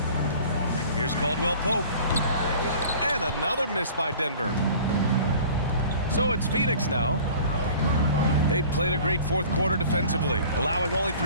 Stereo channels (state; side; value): inverted; both; correlation -0.45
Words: Here's Caldwell Pope. And another miss by Denver. So it's Phoenix now. They've played a great fourth quarter defensively, allowing only